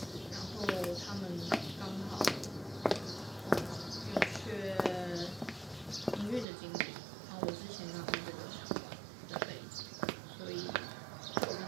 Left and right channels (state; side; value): drops out; left; at 6.5 s